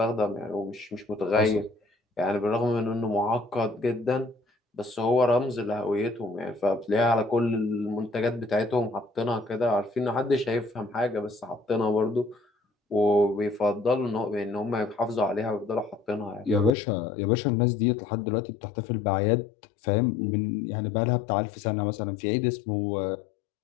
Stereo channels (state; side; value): drops out; right; at 16.7 s